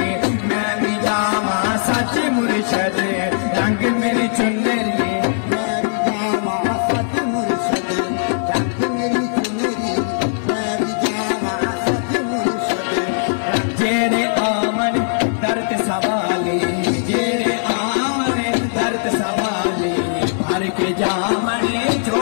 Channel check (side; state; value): right; silent; 56 dB below the other